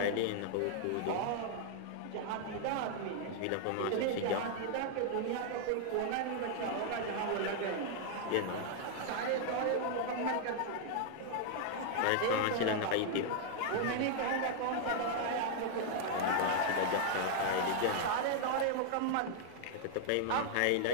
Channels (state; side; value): different; both; correlation 0.00